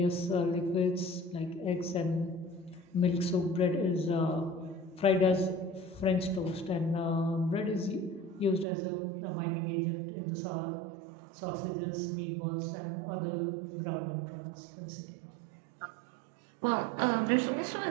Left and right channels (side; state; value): left; drops out; at 8.7 s